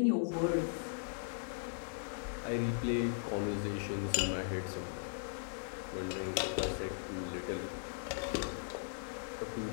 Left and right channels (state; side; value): silent; right; digital silence